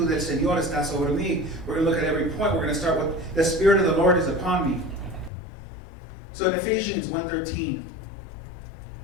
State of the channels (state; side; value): drops out; right; at 5.3 s